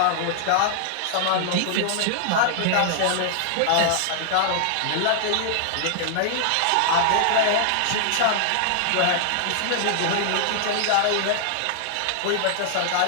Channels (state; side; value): different; both; correlation -0.01